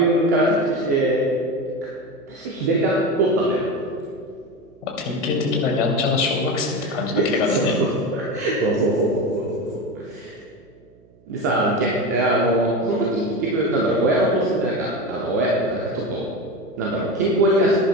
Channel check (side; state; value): right; noise; hum, 29 dB below the sound